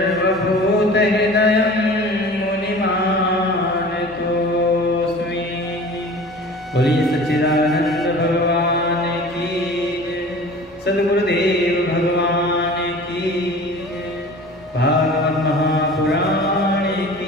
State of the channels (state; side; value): normal; both; correlation 0.41